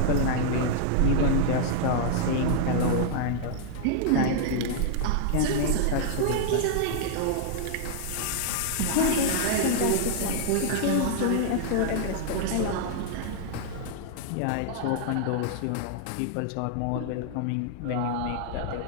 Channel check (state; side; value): different; both; correlation -0.01